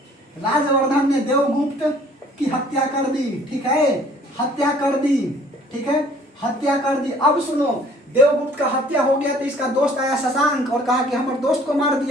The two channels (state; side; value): normal; both; correlation 0.55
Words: ने देवगुप्त की हत्या कर दी, ठीक है, हत्या कर दी। अब सुनो, देवगुप्त का हत्या हो गया तो इसका दोस्त आया शशांक और कहा कि हमारे दोस्त को मार